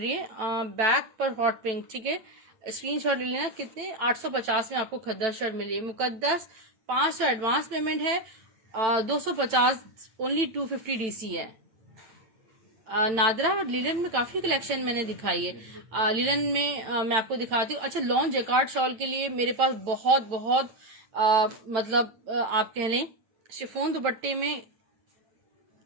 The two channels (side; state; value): left; late; 9.0 ms